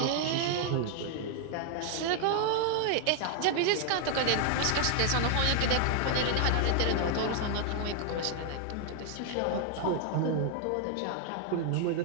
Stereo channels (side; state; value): both; different; correlation 0.00